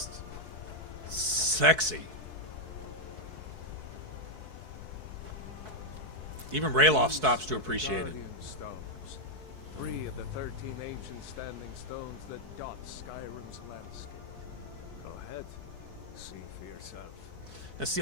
sexy. Even Rayloff stops to appreciate it. Guardian stones. 3 of the 13 ancient standing stones that dot Skyrim's landscape. Go ahead. See for yourself. Now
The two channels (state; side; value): late; left; 4.6 ms